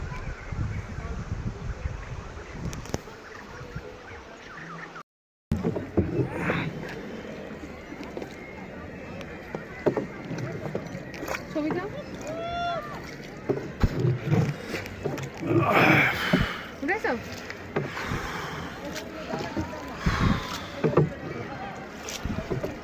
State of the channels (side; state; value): both; identical; correlation 1.00